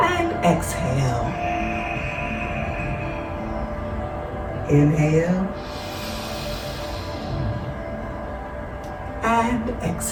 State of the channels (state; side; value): identical; both; correlation 1.00